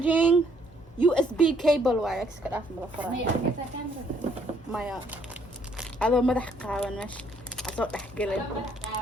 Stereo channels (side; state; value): both; normal; correlation 0.67